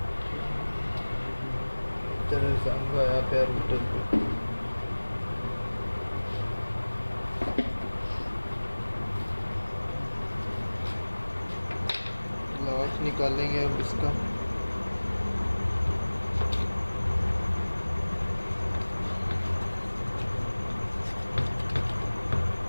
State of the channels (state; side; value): inverted; both; correlation -1.00